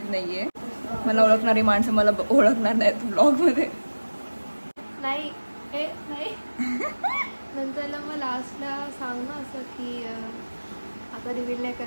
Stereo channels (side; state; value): both; inverted; correlation -1.00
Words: नाही आहे. मला ओळखणारी माणसं मला ओळखणार नाहीत व्लॉगमध्ये. नाही नंतरला मग लास्टला सांग ना असं की आता रिव्हील नाही